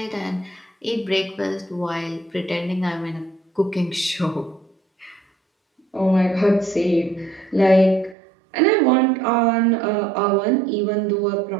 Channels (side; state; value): left; drops out; at 8.2 s